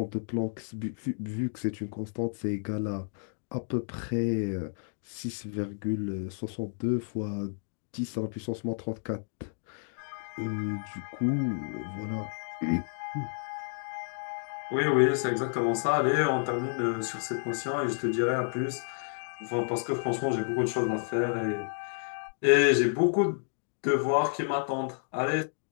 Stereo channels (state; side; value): silent; right; digital silence